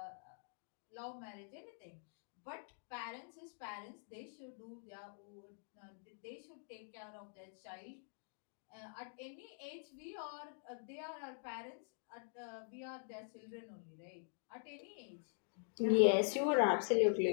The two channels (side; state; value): right; silent; digital silence